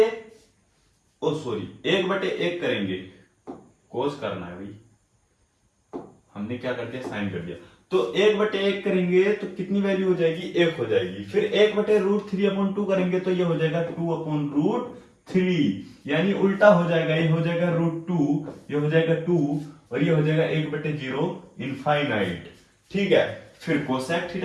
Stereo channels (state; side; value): identical; both; correlation 1.00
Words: 1/1 करेंगे, cos करना है भाई, हमने क्या कर दिया? साइन कर दिया। तो 1/1 करेंगे तो कितनी वैल्यू हो जाएगी? 1 हो जाएगी। फिर 1/√3/2 करेंगे तो ये हो जाएगा 2/√3, यानी उल्टा हो जाएगा। ये हो जाएगा √2, ये हो जाएगा 2 और ये हो जाएगा 1/0 इनफाइनाइट। ठीक है। फिर कोसेक